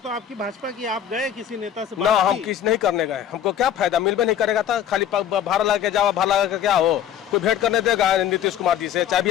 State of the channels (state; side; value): quieter; right; 9.7 dB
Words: आपकी भाजपा की, आप गए किसी नेता से ना, बात हम की? किस नहीं करने गए। हमको क्या फायदा, मिलबे नहीं करेगा था। खाली भाड़ा लगा के जाओ, भाड़ा लगा के क्या हो? कोई भेंट करने देगा नीतीश कुमार जी से? चाहे भी